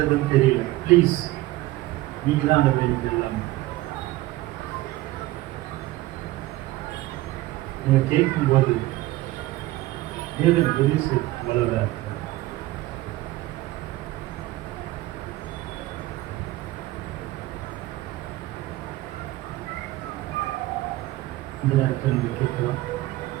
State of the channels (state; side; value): quieter; left; 17.6 dB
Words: தெரியல, ப்ளீஸ் நீங்க தான் அந்த வேலைக்கு எல்லாமே. நீங்க கேட்கும்போது தேவன் உதவி செய்ய வளர்றார். இந்த நேரத்தில் நீங்க கேட்கலாம்.